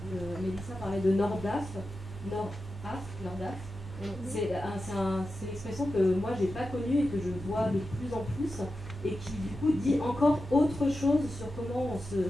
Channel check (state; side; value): normal; both; correlation 0.91